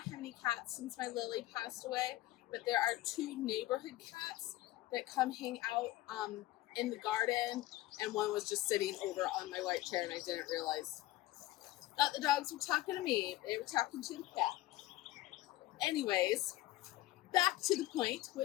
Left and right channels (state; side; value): quieter; right; 16.6 dB